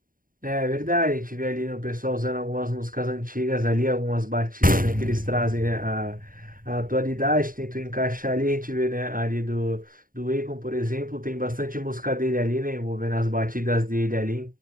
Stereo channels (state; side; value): late; left; 0.41 ms